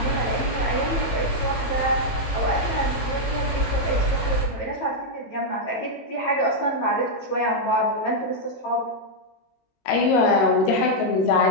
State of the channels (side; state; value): right; late; 18 ms